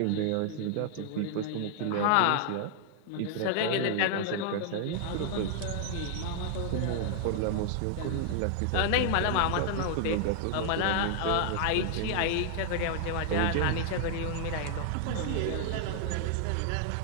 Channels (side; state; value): both; different; correlation 0.00